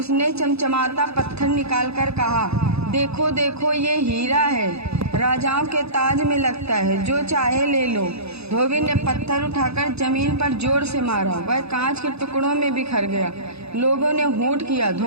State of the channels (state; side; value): late; left; 0.79 ms